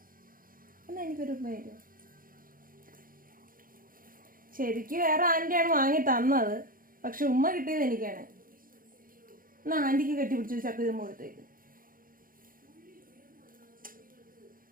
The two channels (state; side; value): late; left; 0.41 ms